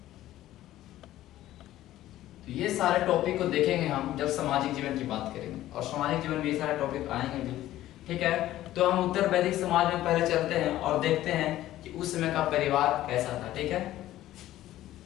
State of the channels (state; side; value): quieter; right; 14.2 dB